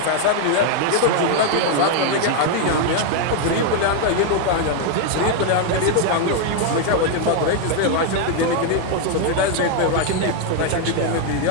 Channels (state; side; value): different; both; correlation 0.00